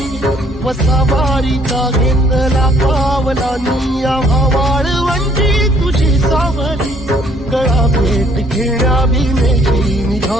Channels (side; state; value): both; normal; correlation 0.63